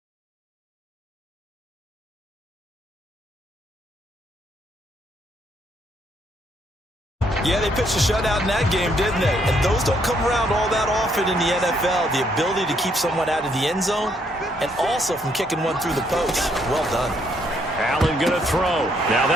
Yeah, they pitched a shutout in that game, didn't they? And those don't come around all that often in the NFL. The ability to keep someone out of the end zone and also from kicking one through the post. Well done. Allen going to throw. Now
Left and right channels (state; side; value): normal; both; correlation 0.71